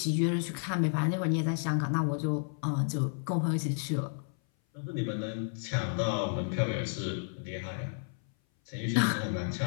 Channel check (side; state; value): right; silent; 57 dB below the other